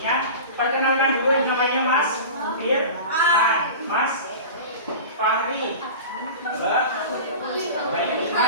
Perkenalkan dulu, yang namanya Mas Firman, Mas Fahri, Mbak Bayu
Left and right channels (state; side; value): inverted; both; correlation -0.33